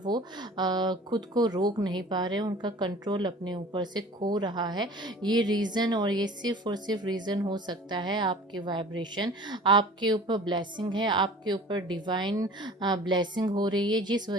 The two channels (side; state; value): both; normal; correlation 0.44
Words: खुद को रोक नहीं पा रहे, उनका कंट्रोल अपने ऊपर से खो रहा है। ये रीज़न, और ये सिर्फ और सिर्फ रीज़न हो सकता है आपके वाइब्रेशन, आपके ऊपर ब्लेसिंग है, आपके ऊपर डिवाइन ब्लेसिंग हो रही है, जिस